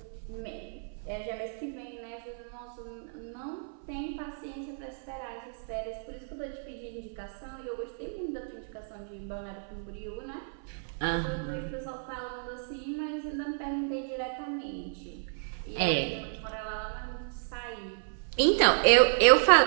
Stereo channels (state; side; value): silent; left; 57 dB below the other